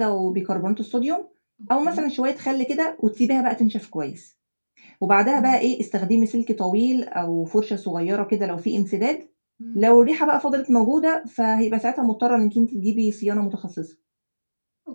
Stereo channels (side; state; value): both; inverted; correlation -1.00